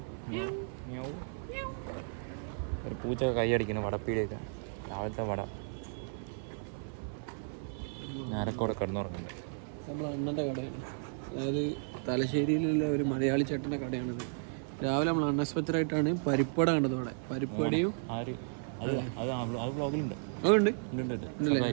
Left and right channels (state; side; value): silent; left; 55 dB below the other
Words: ഒരു പൂച്ചൊക്കെ കൈയടിക്കുന്നു വടപ്പീടിയൊക്കെ. രാവിലത്തെ വട ഞാനൊക്കെ അവിടെ കിടന്നുറങ്ങുന്നുണ്ട്. അതായത് തലശ്ശേരിയിലുള്ള ഒരു മലയാളി ചേട്ടൻ്റെ കടയാണിത്. രാവിലെ നമ്മൾ അൺഎക്സ്പെക്റ്റഡ് ആയിട്ടാണ് പരിപ്പട കണ്ടത് അവിടെ. പരിപ്പടയും ബ്ലോഗിലുണ്ട് ഉണ്ടല്ലേ,